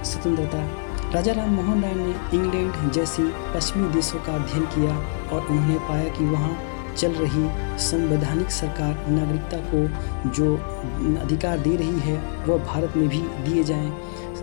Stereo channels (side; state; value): right; silent; 63 dB below the other